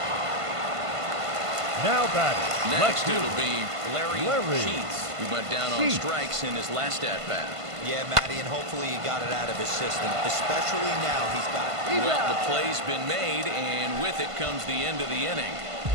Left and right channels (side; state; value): left; late; 1.5 ms